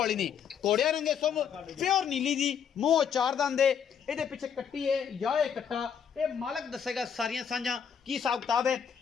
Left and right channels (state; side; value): quieter; right; 7.6 dB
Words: नहीं घोड़िया रंगे सुम प्योर नीली जी मूँह चार दंद है ये पिछे कट्टी है या ये कट्टा ये मालक दसेगा सारिया सांझा की हिसाब किताब है।